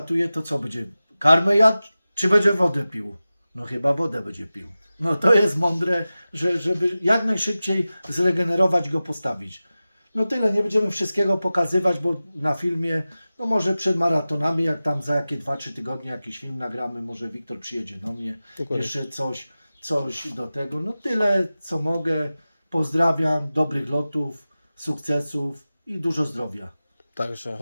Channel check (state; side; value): inverted; both; correlation -0.96